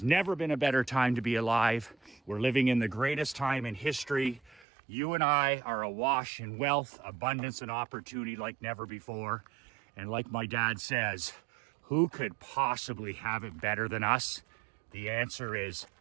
never been a better time to be alive. We're living in the greatest time in history. You and I are awash in wealth, abundance, and opportunity like never before. And like my dad says, who could possibly have it better than us? The answer is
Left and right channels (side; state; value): left; drops out; at 4.7 s